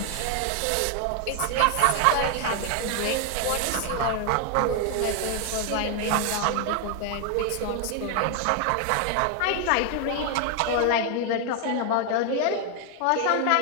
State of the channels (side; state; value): both; different; correlation 0.00